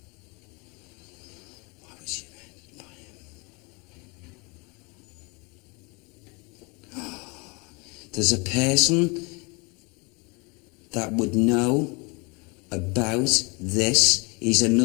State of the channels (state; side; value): quieter; right; 29.3 dB